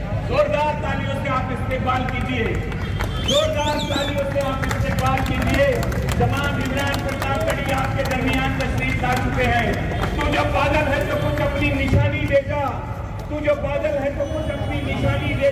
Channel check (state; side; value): identical; both; correlation 1.00